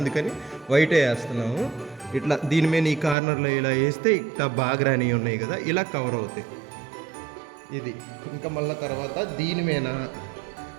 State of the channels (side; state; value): left; drops out; at 3.2 s